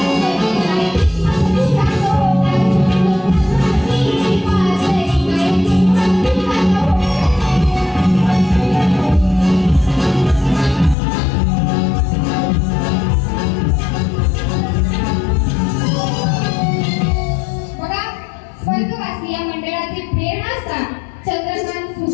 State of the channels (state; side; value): drops out; right; at 11.0 s